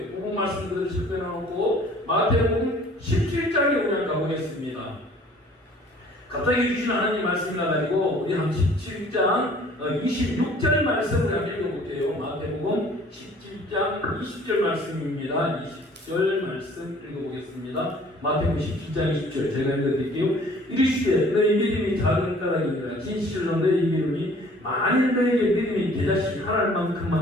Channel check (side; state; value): both; normal; correlation 0.53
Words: 복음 말씀들을 집어넣고 마태복음 17장에 우리 가보겠습니다. 갑자기 주신 하나님 말씀이 나가지고 우리 한 17장 26절 말씀을 한번 읽어볼게요. 마태복음 17장 20절 말씀입니다. 20절 말씀 읽어보겠습니다. 마태복음 17장 20절 제가 읽어드릴게요. 이르시되 너희 믿음이 작은 까닭이니라. 진실로 너희 믿음이 만일 너에게 믿음이 대자식 하나할